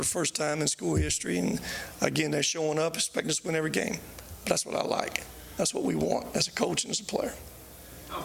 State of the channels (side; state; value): both; identical; correlation 1.00